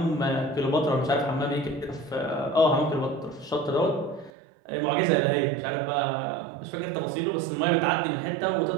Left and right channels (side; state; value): left; drops out; at 4.3 s